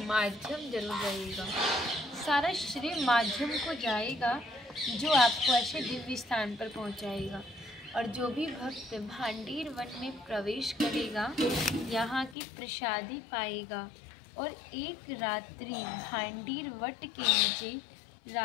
माध्यम जरूर रहेगा। सारा श्रेय माध्यम को जाएगा जो आपको ऐसे दिव्य स्थान पर पहुंचाएगा। और जो भी भक्त भांडीर वन में प्रवेश करेगा यहाँ की प्रसादी पाएगा और एक रात्रि भांडीर वट के नीचे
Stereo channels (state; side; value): drops out; right; at 12.4 s